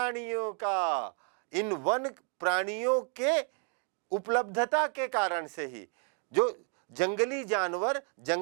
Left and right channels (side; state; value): left; quieter; 39.6 dB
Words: का। इन वन प्राणियों के उपलब्धता के कारण से ही, जो जंगली जानवर